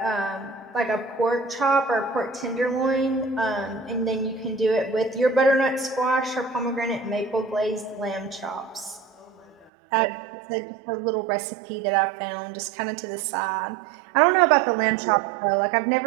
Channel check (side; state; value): left; drops out; at 9.7 s